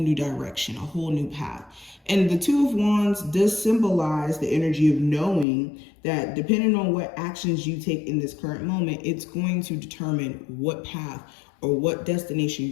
direction, a whole new path? And the Two of Wands does symbolize the energy of knowing that depending on what actions you take in this current moment, it's going to determine what path or what destination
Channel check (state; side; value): drops out; right; at 5.5 s